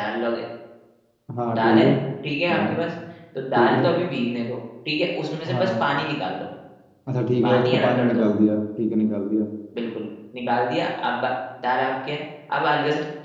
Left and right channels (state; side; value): identical; both; correlation 1.00